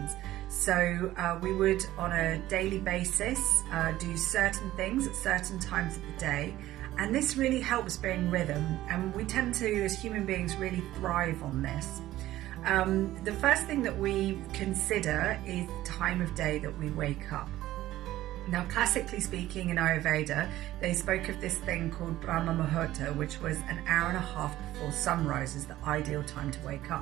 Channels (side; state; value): left; quieter; 15.0 dB